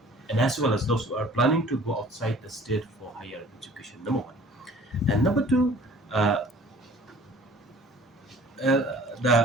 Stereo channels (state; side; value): normal; both; correlation 0.50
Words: and as well as those who are planning to go outside the state for higher education. Number one, and number two. Uh, uh,